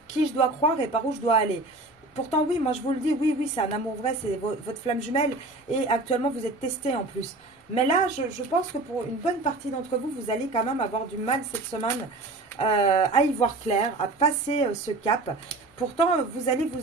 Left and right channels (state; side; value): quieter; left; 3.1 dB